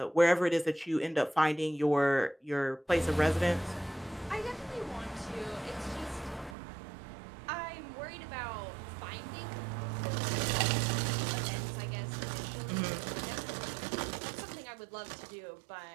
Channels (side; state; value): left; drops out; at 6.6 s